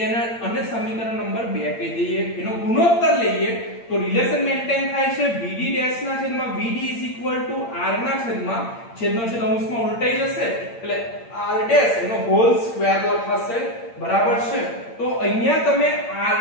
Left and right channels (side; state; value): right; late; 8.8 ms